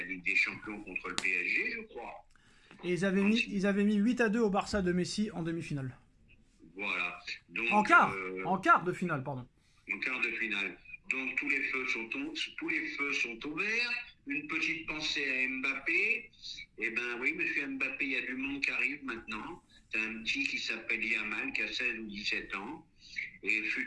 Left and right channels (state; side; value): identical; both; correlation 1.00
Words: Ligue des Champions contre le PSG, je crois. Et ils avaient mis 8-2 au Barça de Messi en demi-finale. Voilà. Donc, en quart de finale, pardon. En quart de finale. Donc tous les feux sont ouverts. Une petite pensée à Mbappé. Eh ben oui, monsieur Mbappé, il y a du monde qui arrive maintenant. T'as un petit qui s'appelle Yamal, qui a 16 ou 17 ans, et